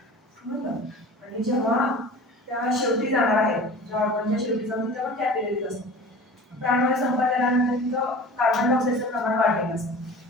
समजलं? आणि जेव्हा त्या शेवटी जाणार आहे, ज्या ऑर्गनच्या शेवटी जाऊन तिथं पण कॅपिलरीज असतात. प्राणवायू संपत आल्यानंतर तिथं कार्बन डायऑक्साईडचं प्रमाण वाढलेलं असतं.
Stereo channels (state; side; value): normal; both; correlation 0.39